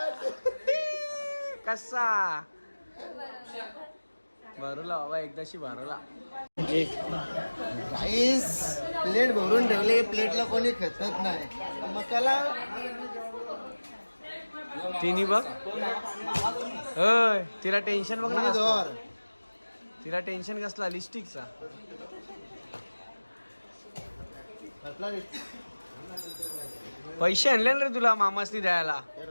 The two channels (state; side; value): inverted; both; correlation -1.00